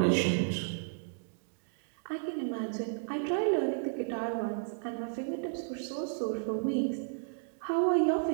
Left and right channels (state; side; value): silent; left; digital silence